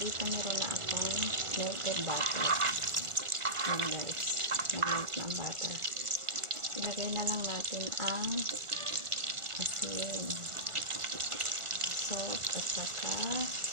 meron na akong melted butter. Yan guys. Nag-melt na ang butter. Ilagay na lang natin ang asin, salt, at saka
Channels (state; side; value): late; left; 1.4 ms